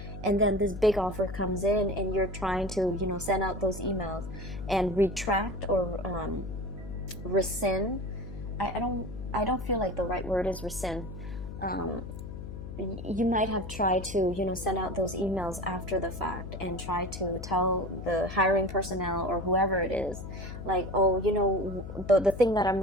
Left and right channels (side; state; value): left; noise; hum, 9 dB below the sound